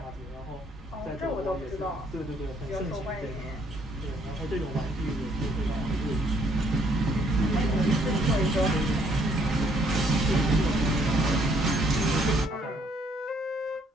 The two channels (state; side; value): normal; both; correlation 0.67